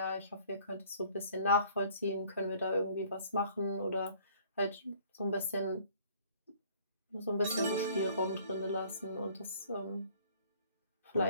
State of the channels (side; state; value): both; inverted; correlation -0.56